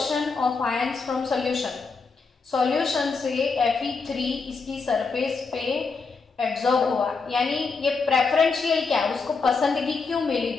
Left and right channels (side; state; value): right; quieter; 4.6 dB